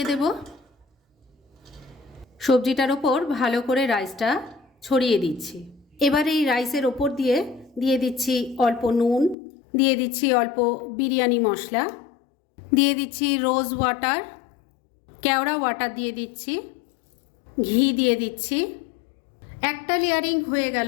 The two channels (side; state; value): right; drops out; at 9.3 s